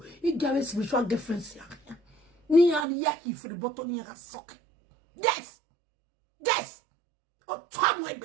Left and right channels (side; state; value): left; drops out; at 2.9 s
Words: You get spiritual girlfriends ya. Ni ani yaki for the bottom ni ga soke. Yes. Oh, Tom